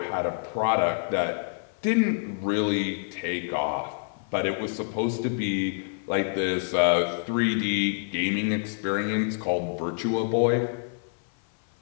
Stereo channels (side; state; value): right; silent; 60 dB below the other